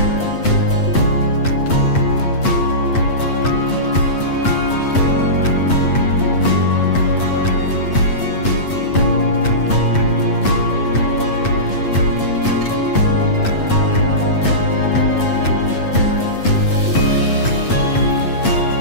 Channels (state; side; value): late; right; 8.2 ms